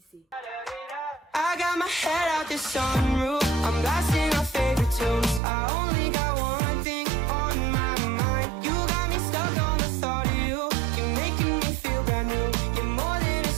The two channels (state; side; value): drops out; left; at 5.4 s